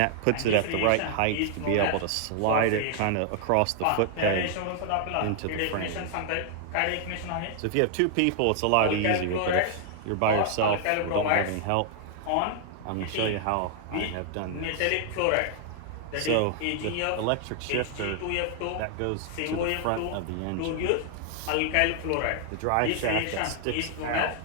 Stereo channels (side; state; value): both; different; correlation 0.00